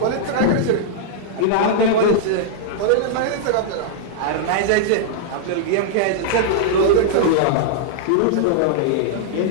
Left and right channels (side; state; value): both; different; correlation -0.01